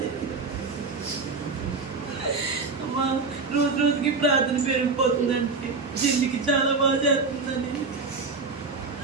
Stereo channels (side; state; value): left; quieter; 4.4 dB